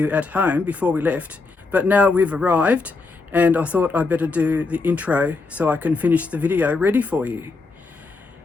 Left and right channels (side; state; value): right; quieter; 3.9 dB